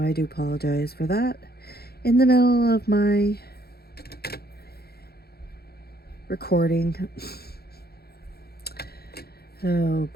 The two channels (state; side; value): late; right; 0.46 ms